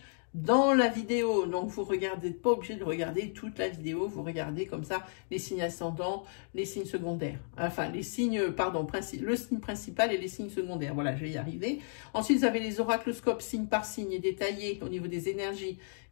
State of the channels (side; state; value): right; silent; digital silence